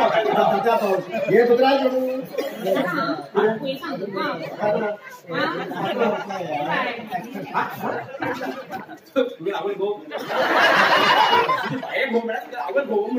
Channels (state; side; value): identical; both; correlation 1.00